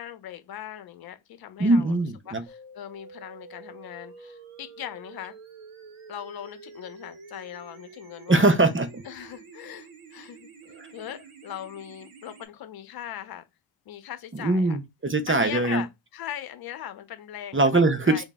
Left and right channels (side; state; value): both; normal; correlation 0.36